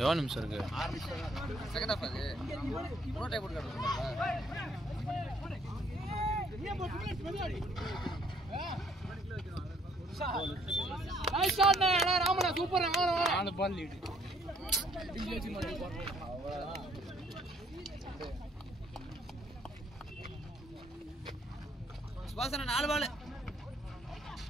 நிமிஷம் இருக்கு செகண்ட் ஹாஃப் அது ப்ரோ டைப் போட்டு நைஸ் ஷாட் நே ராமனா சூப்பர் அந்த பால் லீட் சுபாசன 4 பால்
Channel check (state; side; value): normal; both; correlation 0.64